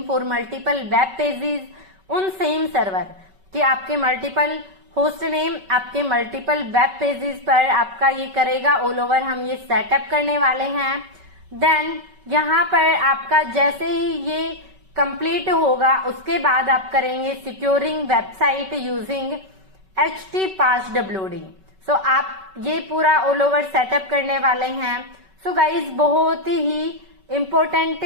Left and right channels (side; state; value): left; late; 5.3 ms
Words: for multiple web pages उन सेम सर्वर कि आपके मल्टीपल होस्ट नेम आपके मल्टीपल वेब पेजेस पर आपका ये करेगा ऑल ओवर। हम ये सेटअप करने वाले हैं। देन यहाँ पर आपका जैसे ही ये कंप्लीट होगा उसके बाद आप करेंगे सिक्योरिंग वेबसाइट यूजिंग HTPasswd। सो आप ये पूरा ऑल ओवर सेटअप करने वाले हैं। सो गाइज बहुत ही इम्पोर्टेंट